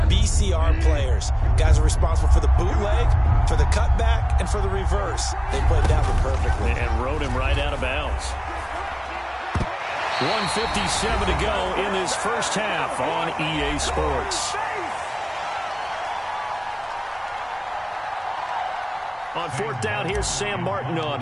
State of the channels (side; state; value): both; identical; correlation 1.00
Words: BCR players. Guys are responsible for the bootleg, for the cutback, and for the reverse. They played that one perfectly. And rode him right out of bounds. 1:57 to go in this first half on EA Sports. On 4th down, here's Sam Martin on